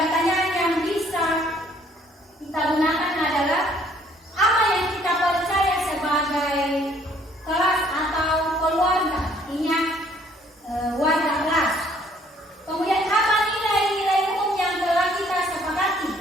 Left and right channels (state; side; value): normal; both; correlation 0.61